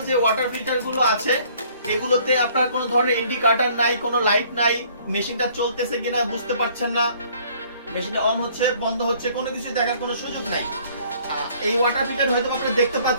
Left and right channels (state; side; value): inverted; both; correlation -0.59